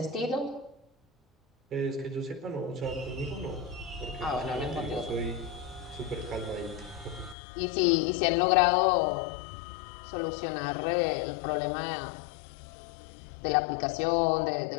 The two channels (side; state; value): right; drops out; at 7.4 s